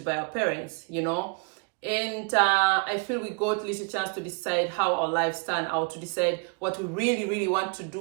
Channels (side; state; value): left; quieter; 36.2 dB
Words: by our parents, you know. And I feel we got little chance to decide how our lives turn out, to decide what we really want to do,